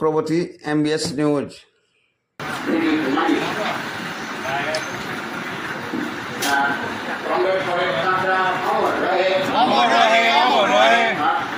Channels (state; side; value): identical; both; correlation 1.00